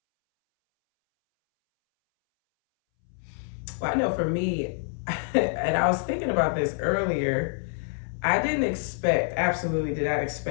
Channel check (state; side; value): silent; right; 60 dB below the other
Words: Well, I know for me, and I was thinking about this earlier, I absolutely did not